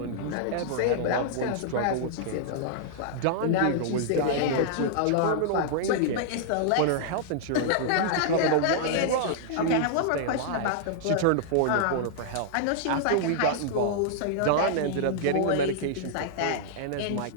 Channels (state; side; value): different; both; correlation -0.01